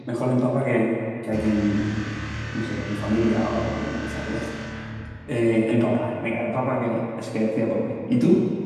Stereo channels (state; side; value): identical; both; correlation 1.00